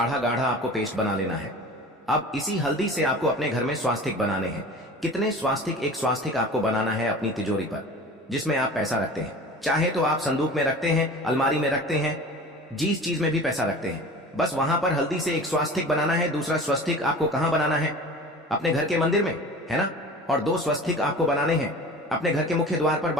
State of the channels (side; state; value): both; normal; correlation 0.38